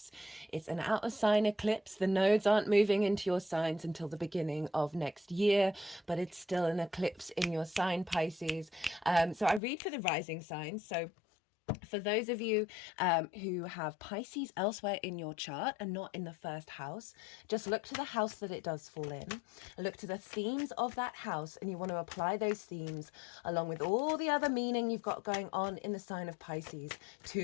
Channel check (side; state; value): right; drops out; at 9.6 s